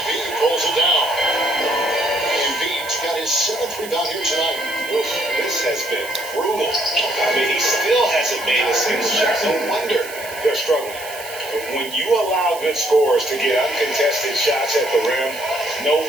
pulls it down. Embiid's got his 7th rebound here tonight. Oof, this has been brutal. I mean, he still hasn't made a single shot. No wonder they're struggling. But when you allow good scorers to get uncontested shots at the rim, no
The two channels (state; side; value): noise; right; hiss, 14 dB below the sound